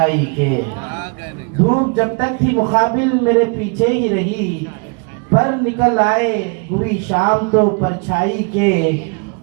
के, धूप जब तक थी मुकाबिल मेरे पीछे ही रही। पर निकल आए हुई शाम तो परछाई के।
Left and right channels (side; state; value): left; quieter; 33.6 dB